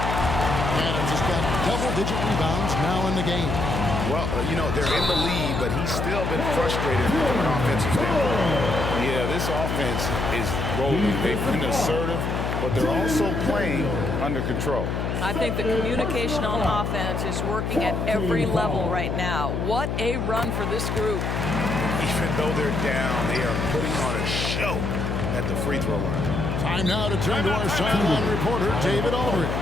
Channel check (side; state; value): left; noise; hum, 1 dB below the sound